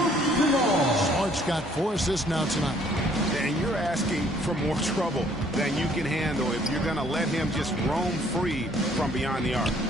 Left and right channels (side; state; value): both; normal; correlation 0.61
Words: Smart's got 4 assists now tonight. And you're asking for more trouble than you can handle if you're going to let him just roam free from beyond the arc.